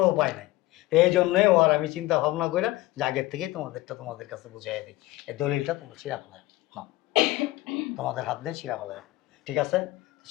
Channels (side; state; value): right; quieter; 18.1 dB